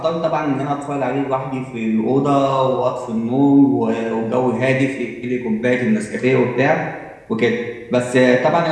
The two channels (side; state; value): both; identical; correlation 1.00